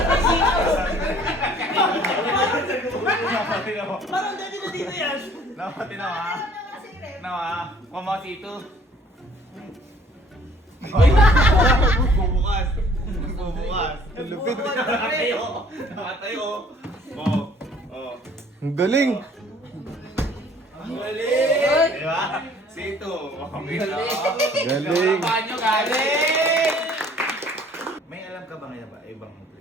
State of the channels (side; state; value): both; normal; correlation 0.56